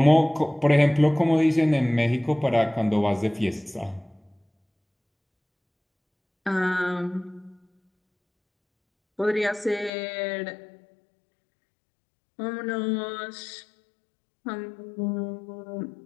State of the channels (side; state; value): right; drops out; at 9.9 s